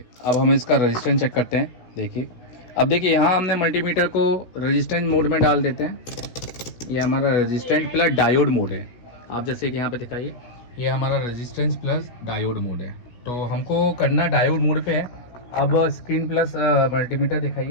अब हम इसका रेजिस्टेंस चेक करते हैं। देखिए, अब देखिए यहाँ हमने मल्टीमीटर को रेजिस्टेंस मोड में डाल देते हैं। ये हमारा रेजिस्टेंस प्लस डायोड मोड है। आप जैसे कि यहाँ पे दिखाइए, ये हमारा रेजिस्टेंस प्लस डायोड मोड है। तो हमको करना डायोड मोड पे है। अब स्क्रीन प्लस मल्टीमीटर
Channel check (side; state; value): right; late; 16 ms